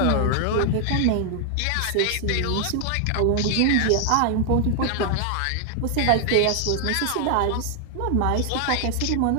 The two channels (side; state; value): both; different; correlation 0.00